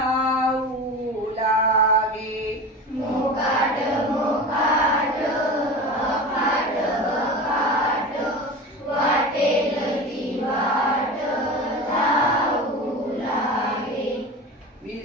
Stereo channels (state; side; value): normal; both; correlation 0.31